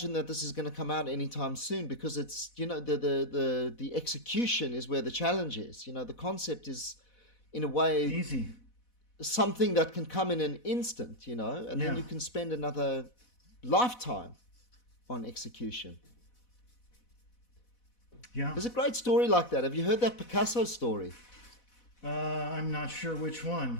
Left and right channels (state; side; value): late; right; 4.1 ms